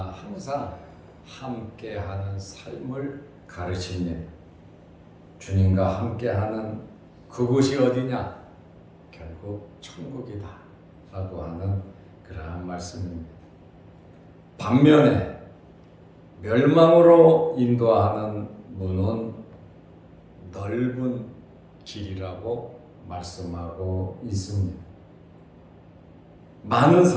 항상 함께하는 삶을 가르칩니다. 주님과 함께하는 그곳이 어디냐? 결국 천국이다 라고 하는 그러한 말씀입니다. 반면에 멸망으로 인도하는 문은 넓은 길이라고 말씀하고 있습니다. 많은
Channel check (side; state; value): both; identical; correlation 1.00